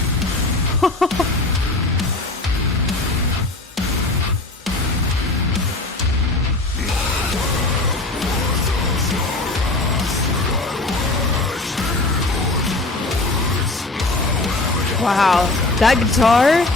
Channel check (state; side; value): quieter; right; 3.0 dB